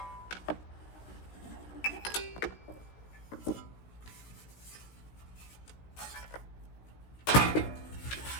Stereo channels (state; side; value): late; right; 16 ms